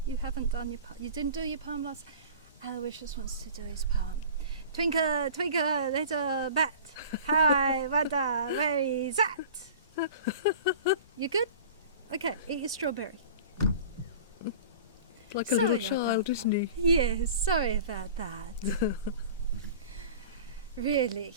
You haven't done your poem. You didn't do your poem last. Aloysius wants to do his poem. Twinkle, twinkle, little bat. How I wonder where he's at. You good? Okay, eat your strawberry. Like a little child, isn't he? Yes, sorry about that. Really,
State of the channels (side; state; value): both; inverted; correlation -0.40